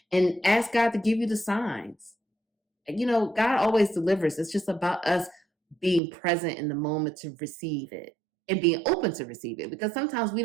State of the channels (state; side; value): drops out; left; at 6.0 s